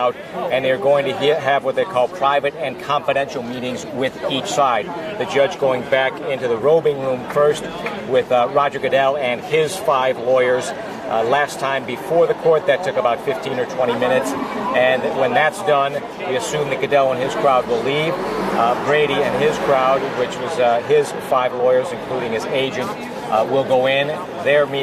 and they're going to have what they call private and confidential meetings with each side. The judge going back into the robing room first with Roger Goodell and his 5 lawyers. Last time before the court, that took about 15 or 20 minutes. And when that's done, we assume that Goodell and his crowd will leave. Brady and his crowd, which was his 5 lawyers, including his agent, will go in. Their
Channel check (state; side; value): identical; both; correlation 1.00